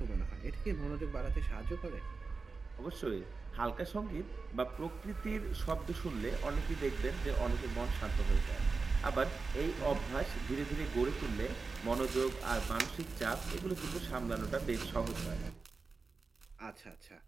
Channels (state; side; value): quieter; left; 4.3 dB